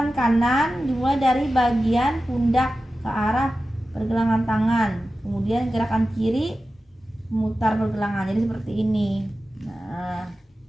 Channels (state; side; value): normal; both; correlation 0.94